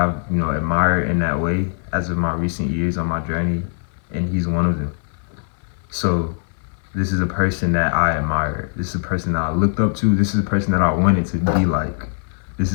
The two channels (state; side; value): silent; right; 61 dB below the other